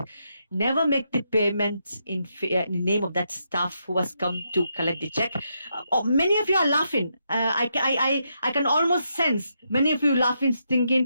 Never make the payment in the name of that staff who has come to collect the check. Many of you are laughing. I can almost sense many of you laughing,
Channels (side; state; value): both; inverted; correlation -0.81